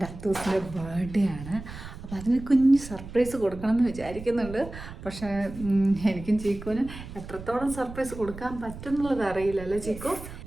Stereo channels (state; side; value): noise; right; rumble, 13 dB below the sound